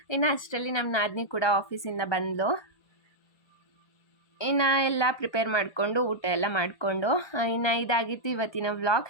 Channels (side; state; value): right; late; 1.2 ms